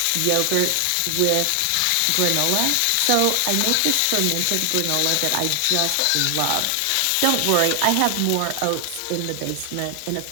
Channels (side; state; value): both; different; correlation 0.00